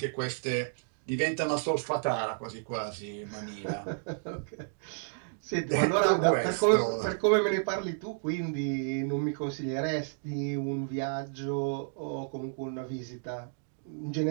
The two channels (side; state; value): left; silent; digital silence